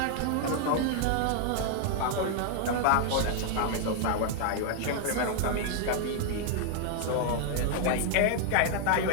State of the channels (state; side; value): different; both; correlation 0.00